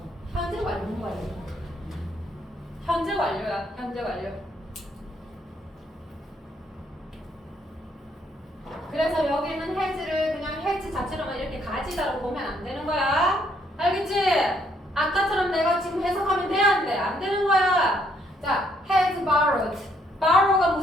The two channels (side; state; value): both; normal; correlation 0.70